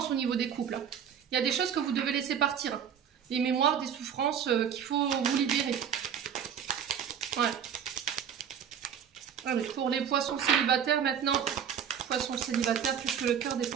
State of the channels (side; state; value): left; quieter; 8.3 dB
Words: au niveau des couples. Il y a des choses que vous devez laisser partir. Des mémoires, des souffrances qu'il faut vous libérer. Ouais. Allez, pour les poissons célibataires maintenant, poissons célibataires, puisque le cœur des